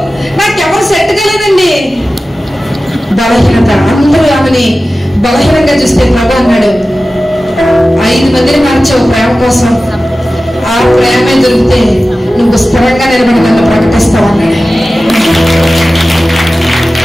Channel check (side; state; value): both; normal; correlation 0.95